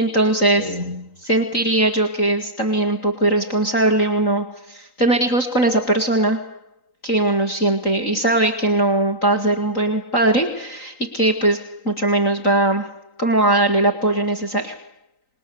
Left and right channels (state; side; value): late; right; 3.9 ms